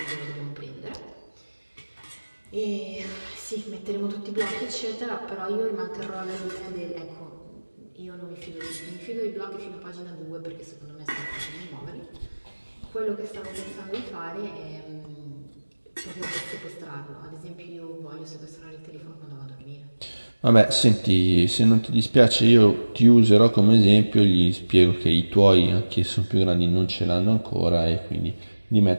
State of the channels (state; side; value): inverted; both; correlation -1.00